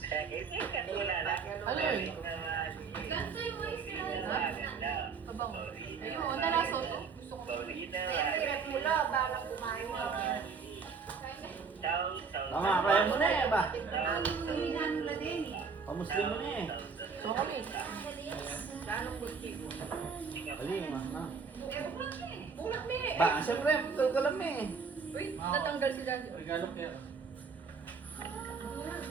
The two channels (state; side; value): quieter; left; 5.4 dB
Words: Ano yun? Ganito yung mais na Abang. Ayun, nalaso to. Gusto ko. Siyempre, hirap mo lang, parang kumain mo. Tama, kaya mo na eh ba? Hinanula din eh. Pamuslim mo na eh. So kami. Lalong kultibo. Bali, ma. Eh, bukulat na eh. Bulat me. Ba, siyempre, pagkal ka lang eh. Uy, natanggal si Daddy. Regalo kaya.